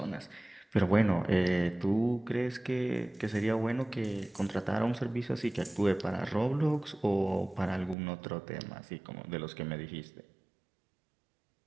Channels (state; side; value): drops out; left; at 8.0 s